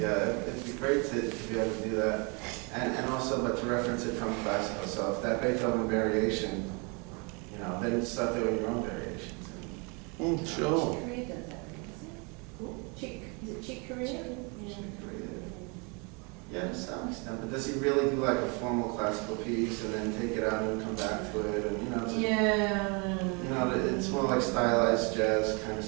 be great to be able to do that. And also, but to reference it from classical, so if that Beethoven variation, you know, then start doing your own variations. Sure. Chick Corea does that, isn't it? Chick, is it Chick Corea? Yeah, to some extent, but does he really do like a formal classical piece and then take it out and come back to it, and you know, it's, you know, it's more like stylized jazz kind of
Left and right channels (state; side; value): quieter; left; 32.1 dB